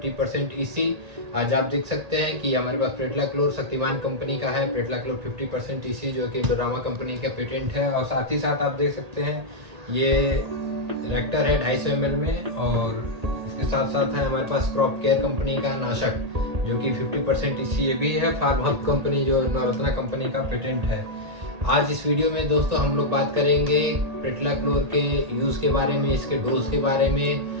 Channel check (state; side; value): late; left; 1.8 ms